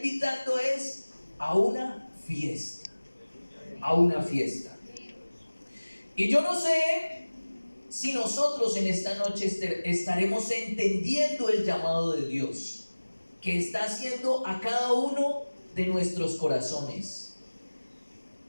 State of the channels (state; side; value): inverted; both; correlation -1.00